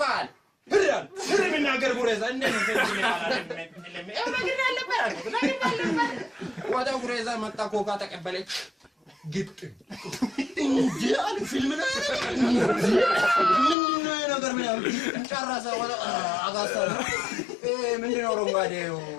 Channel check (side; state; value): right; drops out; at 13.8 s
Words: ህሪያል ህሪ ምናገር ጉሬዛ እንደምን ተንጅ ይላል ያው ነገር አለበት ወጣው ጉሬዛ መጣ ኮካ ተቀበለች ግጥ እንዴ አለ ፊልም ነው ምንድነው ነገር ምን ያው ጨረሰ ወጣ አጋሳ ምንድነው ሮንጋዴው